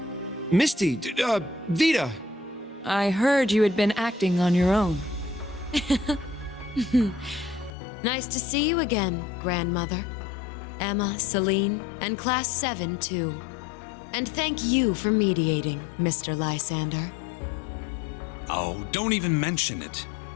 Misty, Vita! I heard you had been acting on your own. Nice to see you again, Grandmother. Emma, Celine, and Class 7, too. And thank you for mediating, Mr. Lysander. Oh, don't even mention it.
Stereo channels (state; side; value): drops out; right; at 7.7 s